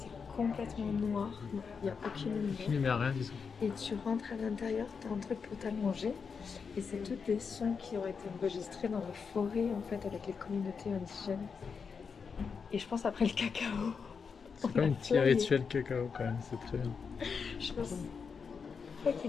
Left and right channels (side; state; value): right; quieter; 5.8 dB